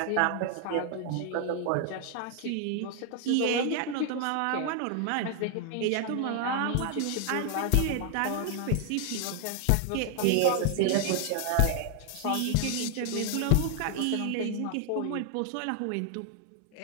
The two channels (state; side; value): different; both; correlation 0.00